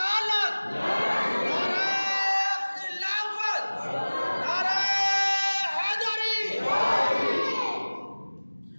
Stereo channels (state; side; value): inverted; both; correlation -1.00